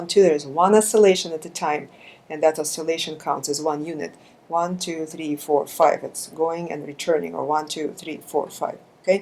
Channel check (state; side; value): identical; both; correlation 1.00